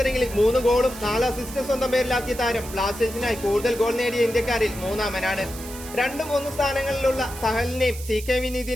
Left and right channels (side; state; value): right; noise; hiss, 14 dB below the sound